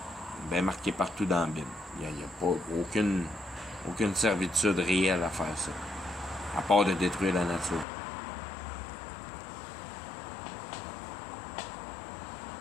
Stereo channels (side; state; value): right; drops out; at 7.9 s